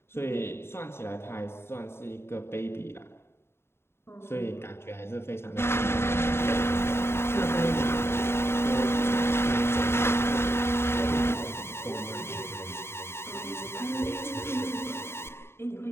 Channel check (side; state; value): right; late; 0.12 ms